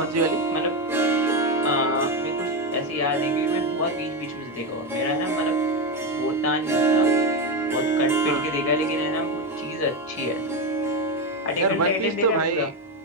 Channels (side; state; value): both; normal; correlation 0.12